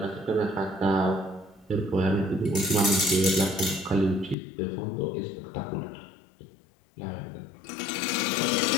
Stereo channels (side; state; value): right; drops out; at 4.4 s